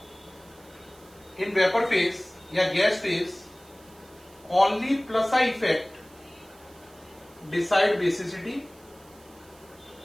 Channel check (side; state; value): right; noise; hiss, 26 dB below the sound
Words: इन वेपर फेज या gas phase, only plus I effect decide basicity.